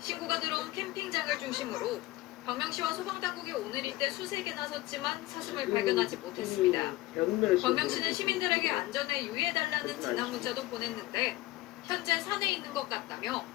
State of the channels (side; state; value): right; quieter; 18.3 dB